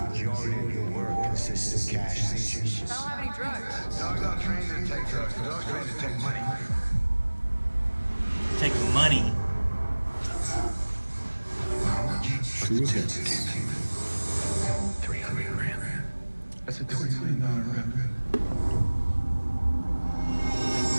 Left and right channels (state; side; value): inverted; both; correlation -1.00